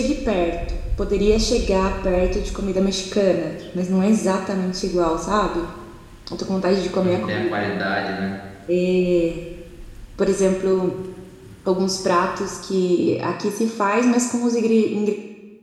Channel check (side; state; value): both; identical; correlation 1.00